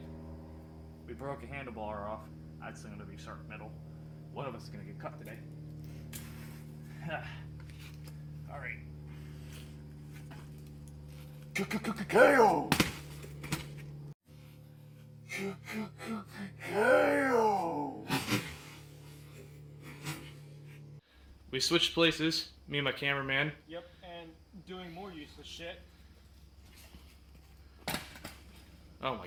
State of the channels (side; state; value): both; identical; correlation 1.00